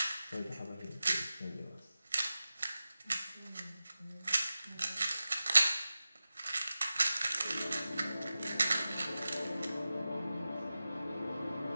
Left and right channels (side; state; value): both; inverted; correlation -0.94